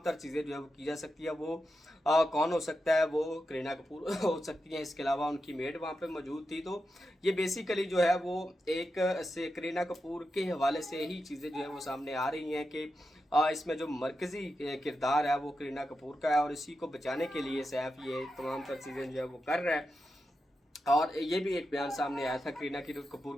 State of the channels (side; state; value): both; normal; correlation 0.89